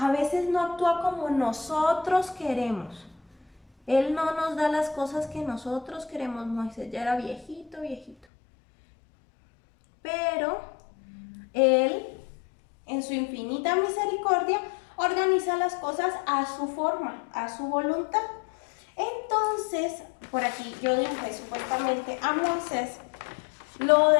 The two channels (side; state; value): right; drops out; at 8.2 s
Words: veces no actúa como nosotros queremos. Él no nos da las cosas que nosotros queremos. Moisés ya era viejito. Pero Él, en su infinita misericordia, organiza las cosas a su forma, a su voluntad. Entonces, por aquí yo dibujé supuestamente a Moisés, lo